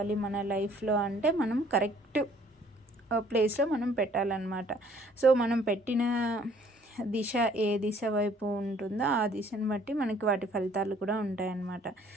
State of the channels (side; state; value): both; normal; correlation 0.59